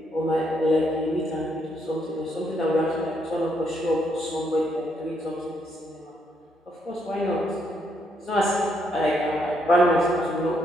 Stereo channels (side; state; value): both; normal; correlation 0.75